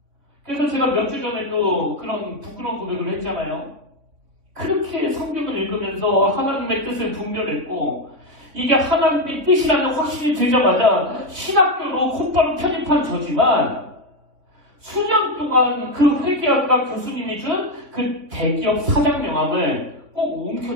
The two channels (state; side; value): late; left; 3.3 ms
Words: 그래서 제가 몇 주 전에도 그런 부끄러운 고백을 했잖아요. 그렇게 성경을 읽으면서 하나님의 뜻을 분별했고 이게 하나님의 뜻이라는 확신이 들자마자 신학교로 곧바로 편입한 저지만 수년 동안 그 회계학과 교수님이 준 그 대기업 사장 명함을 꼭